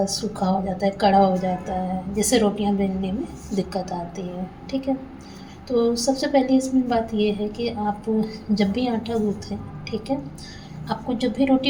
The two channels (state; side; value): identical; both; correlation 1.00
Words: सूखा हो जाता है, कड़ा हो जाता है, जिससे रोटियां बेलने में दिक्कत आती है। ठीक है, तो सबसे पहले इसमें बात ये है कि आप जब भी आटा गूँथें, ठीक है, आपको जब भी